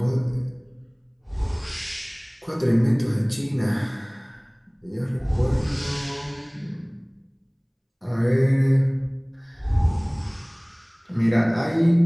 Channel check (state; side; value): identical; both; correlation 1.00